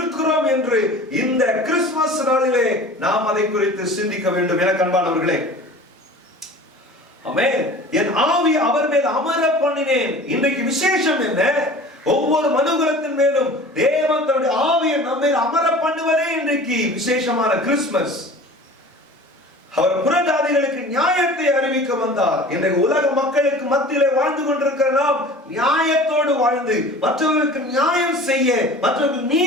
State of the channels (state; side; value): normal; both; correlation 0.42